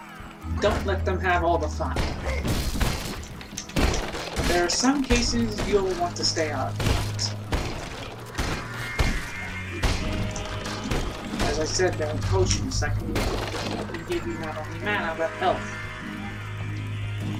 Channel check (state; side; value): identical; both; correlation 1.00